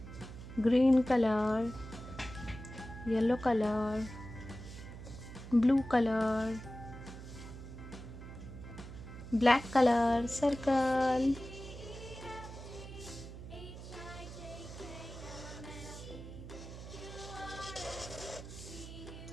green colour, yellow colour, blue colour, black colour, circle,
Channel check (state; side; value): noise; right; hum, 12 dB below the sound